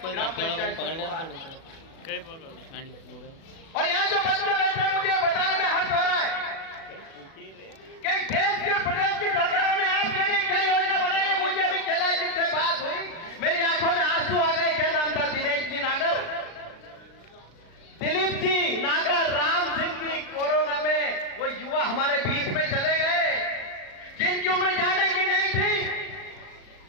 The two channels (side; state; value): right; late; 36 ms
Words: और यहाँ जो बच्चे बैठे हैं, मुझे बताने में हर्ष हो रहा है कि देश के प्रदेश की सरकारों ने आपके लिए क्या योजना बनाई है। मुझे अभी कैलाश जी से बात हुई, मेरी आंखों में आंसू आ गए। क्या नाम था? दिनेश जी नागर, दिलीप जी नागर, राम सिंह जी। कोरोना में वो युवा हमारे बीच में चले गए, जिनकी उम्र जाने की नहीं थी।